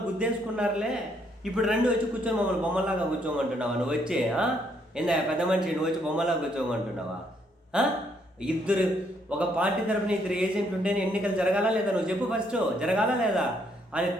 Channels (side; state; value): both; normal; correlation 0.71